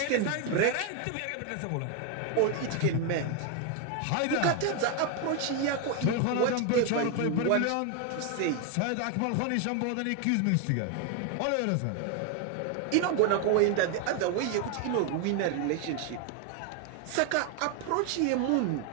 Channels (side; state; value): both; different; correlation 0.01